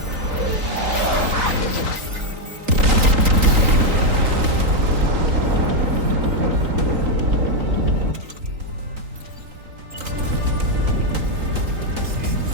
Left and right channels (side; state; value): left; late; 3.8 ms